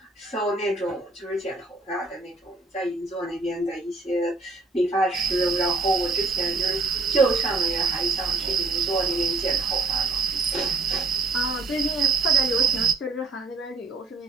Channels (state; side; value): quieter; left; 3.5 dB